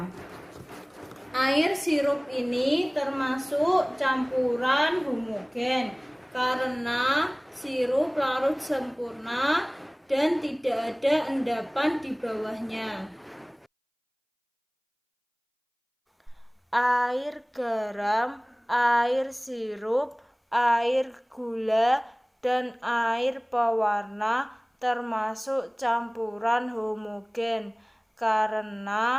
Air sirup ini termasuk campuran homogen karena sirup larut sempurna dan tidak ada endapan di bawahnya. Air garam, air sirup, air gula, dan air pewarna termasuk campuran homogen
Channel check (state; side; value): identical; both; correlation 1.00